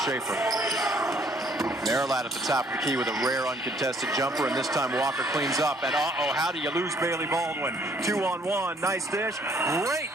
Marilot at the top of the key with a rare uncontested jumper, and this time Walker cleans up. And how do you lose Bailey Baldwin? 2-on-1, nice dish. Great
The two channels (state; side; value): normal; both; correlation 0.63